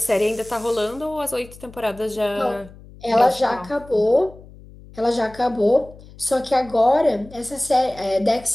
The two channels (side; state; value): left; noise; hum, 20 dB below the sound